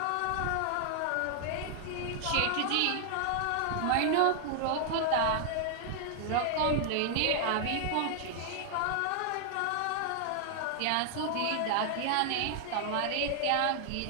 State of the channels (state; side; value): different; both; correlation 0.00